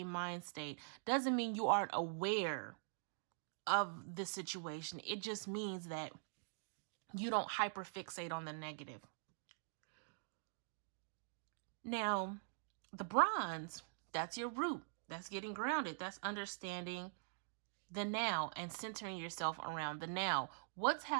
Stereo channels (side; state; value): left; silent; digital silence